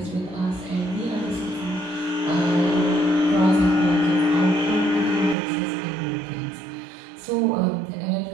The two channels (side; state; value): left; drops out; at 5.4 s